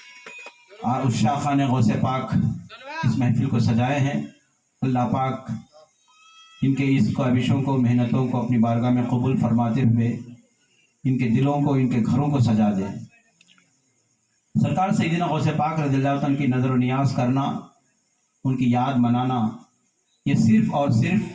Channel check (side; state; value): both; identical; correlation 1.00